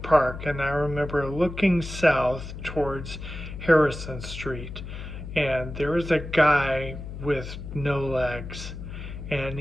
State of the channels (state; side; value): noise; left; hum, 9 dB below the sound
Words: Park, and I remember looking south towards Harrison Street, and there was a guy with no legs, and